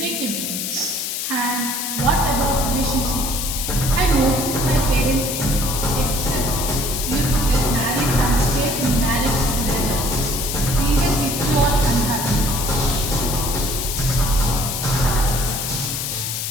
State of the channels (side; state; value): left; noise; hiss, 3 dB below the sound